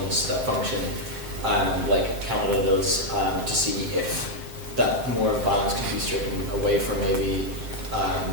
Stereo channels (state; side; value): late; left; 7.7 ms